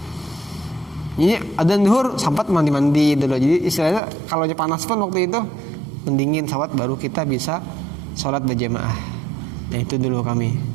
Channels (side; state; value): left; drops out; at 4.0 s